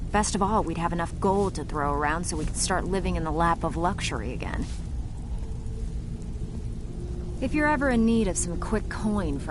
Best of all, we'd have enough gold to throw around so we could start living in the lap of luxury again. If you're ever in need of some quick coin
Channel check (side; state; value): both; identical; correlation 1.00